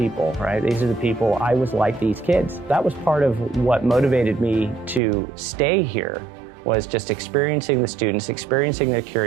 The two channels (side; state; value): left; drops out; at 5.0 s